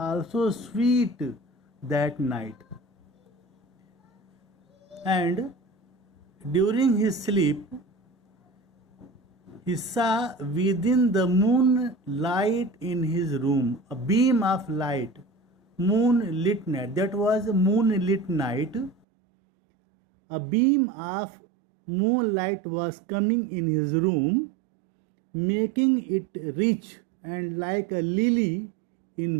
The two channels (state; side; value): drops out; left; at 18.9 s